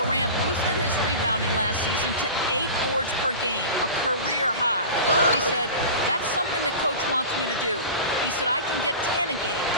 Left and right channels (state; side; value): inverted; both; correlation -0.32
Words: boosted his rebounding last season to 8 boards per game, a career high. He said, that's something that coach wants me to do. He said, I can get 10 a game.